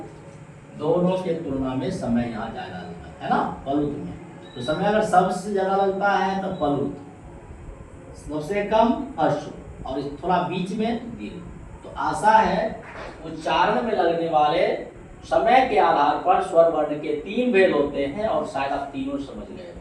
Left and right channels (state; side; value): identical; both; correlation 1.00